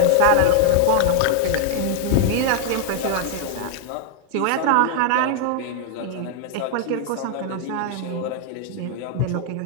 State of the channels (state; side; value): different; both; correlation 0.00